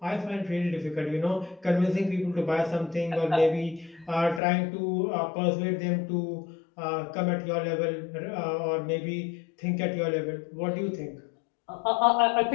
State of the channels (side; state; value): right; drops out; at 4.4 s